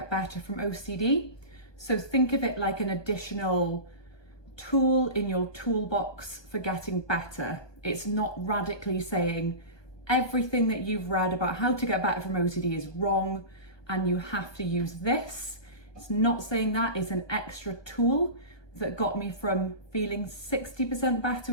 better from OCD. So think of it like an additional tool in your toolbox for getting better. It's not radically saying everything that you've read about how to get better from OCD is wrong and you have to use this. It's not saying that. It's an extra tool that got me from feeling 60% better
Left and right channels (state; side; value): late; right; 1.2 ms